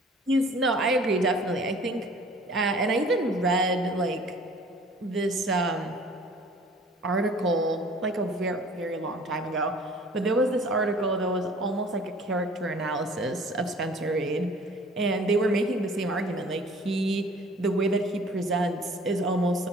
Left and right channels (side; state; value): both; normal; correlation 0.50